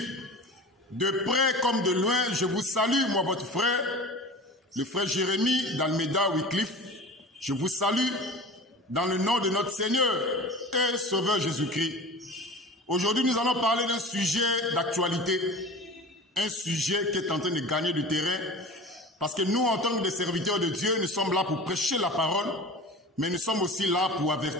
De près comme de loin, je vous salue, moi votre frère, le frère Jérémie d'Almeida Wycliffe. Je vous salue dans le nom de notre Seigneur et Sauveur Jésus-Christ. Aujourd'hui, nous allons parler d'un sujet d'actualité, un sujet qui est en train de gagner du terrain, parce que nous, en tant que des serviteurs de Dieu, nous sommes là pour prêcher la parole, mais nous sommes aussi là pour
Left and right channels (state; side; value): normal; both; correlation 0.36